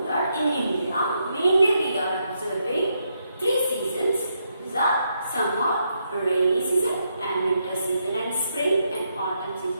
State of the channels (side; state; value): both; inverted; correlation -0.80